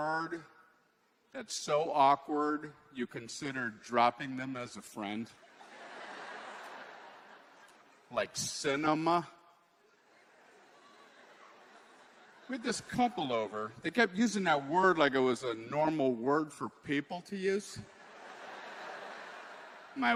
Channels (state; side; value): identical; both; correlation 1.00